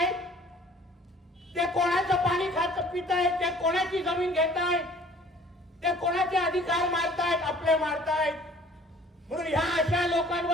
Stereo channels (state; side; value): normal; both; correlation 0.52